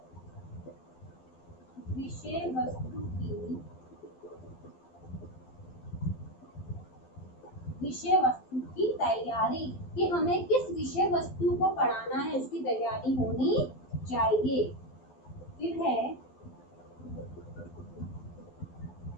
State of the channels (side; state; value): right; late; 12 ms